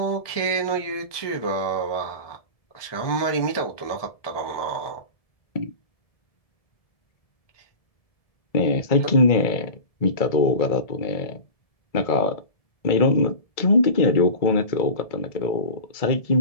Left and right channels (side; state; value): right; late; 1.7 ms